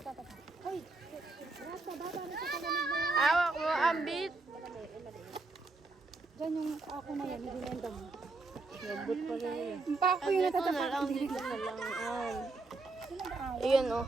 Hoy! Rasa, baba na sa kalamig na yan. Hawak mo ang beat. Diyan yung ako na yan, nililenda mo. Lambot pa rin yun. Yung pa ako yung natatapak. Dito na lang. Ayan o.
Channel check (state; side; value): quieter; left; 3.5 dB